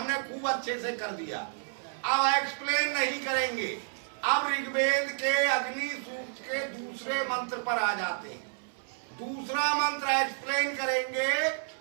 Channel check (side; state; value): left; silent; 58 dB below the other